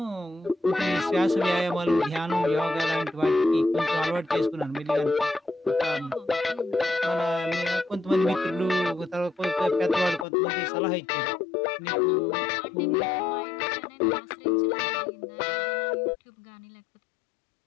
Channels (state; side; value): drops out; right; at 10.2 s